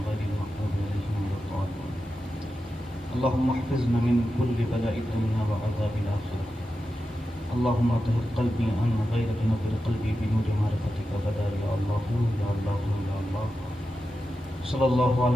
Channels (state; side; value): normal; both; correlation 0.90